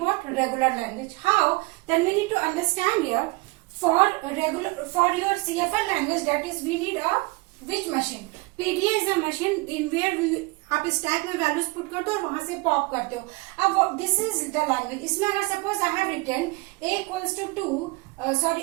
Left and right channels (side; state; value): left; quieter; 24.9 dB